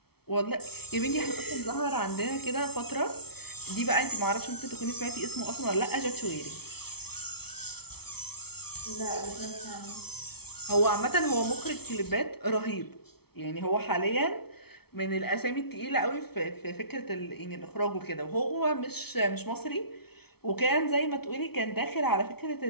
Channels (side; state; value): right; late; 0.96 ms